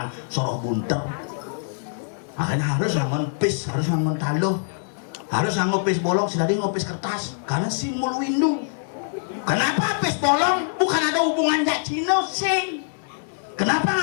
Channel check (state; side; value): silent; right; digital silence